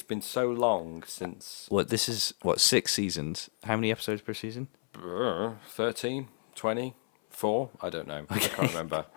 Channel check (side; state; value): right; silent; 57 dB below the other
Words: been so long since What, this is, 6 seasons? How many episodes per season? 13, 20, 4. I don't know. I can't remember.